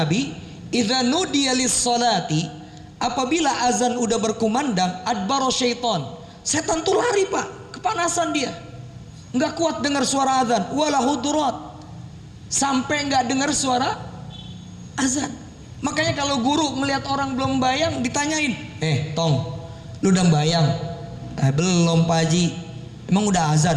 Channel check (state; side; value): identical; both; correlation 1.00